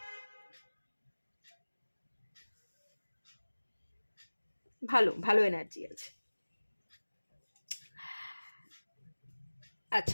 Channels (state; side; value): inverted; both; correlation -1.00